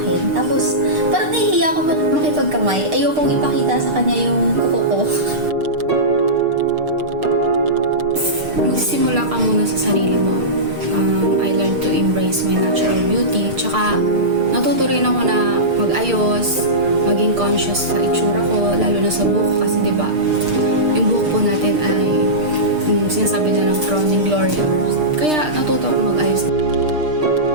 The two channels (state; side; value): late; left; 6.6 ms